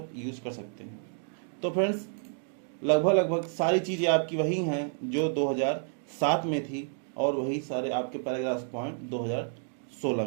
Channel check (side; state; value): left; silent; digital silence